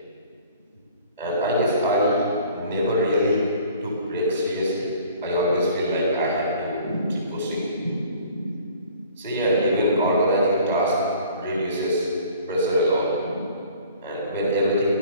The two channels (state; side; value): inverted; both; correlation -0.51